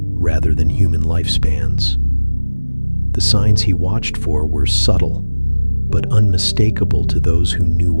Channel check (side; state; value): both; inverted; correlation -1.00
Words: rather than human lifespans. The signs he watched for were subtle, but unmistakable to those who knew